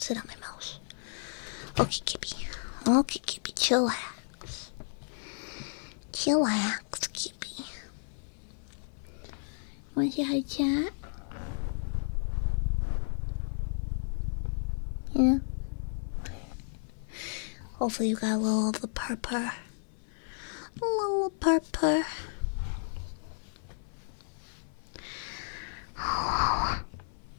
sit on my mouse. Okay, Kippy. Okay, Kippy, chillax. Chillax, Kippy. Want to say hi, chat? Yeah. Hopefully you got a little of the purr. A little purr.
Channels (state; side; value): silent; right; 56 dB below the other